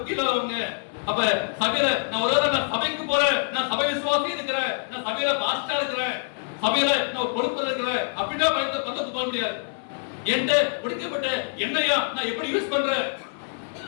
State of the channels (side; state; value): right; silent; 61 dB below the other